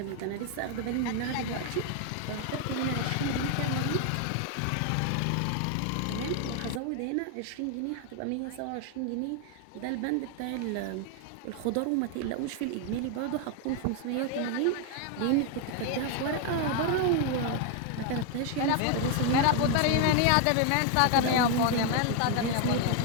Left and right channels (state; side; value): different; both; correlation 0.01